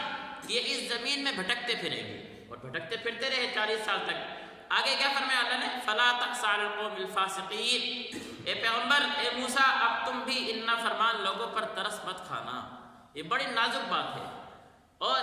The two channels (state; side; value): identical; both; correlation 1.00